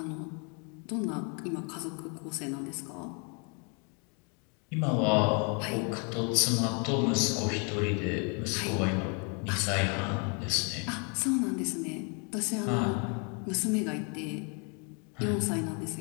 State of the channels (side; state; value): right; quieter; 36.1 dB